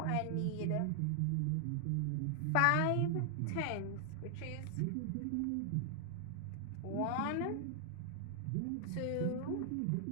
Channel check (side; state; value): both; different; correlation 0.00